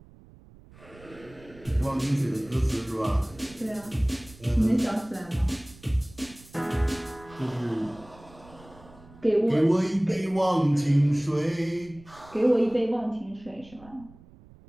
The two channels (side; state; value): right; noise; rumble, 23 dB below the sound